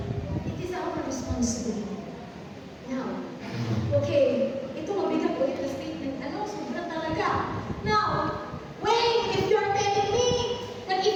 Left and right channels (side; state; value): both; identical; correlation 1.00